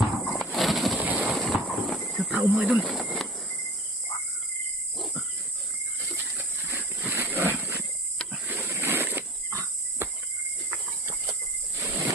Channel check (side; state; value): both; normal; correlation 0.40